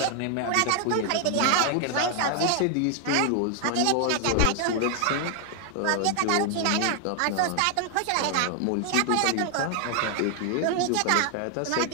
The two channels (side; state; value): both; different; correlation 0.00